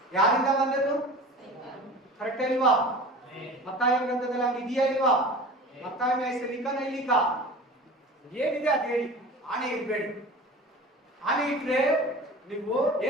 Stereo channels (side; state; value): both; normal; correlation 0.38